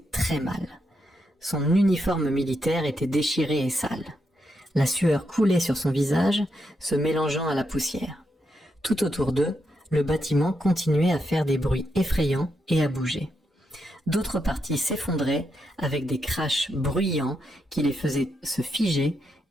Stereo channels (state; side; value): normal; both; correlation 0.82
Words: très mal. Son uniforme militaire était déchiré et sale. La sueur coulait sur son visage, se mélangeant à la poussière. Tout autour d'eux, le bâtiment continuait à faire des bruits effrayants et à bouger. D'autres parties s'effondraient avec des crashs bruyants qui les faisaient se figer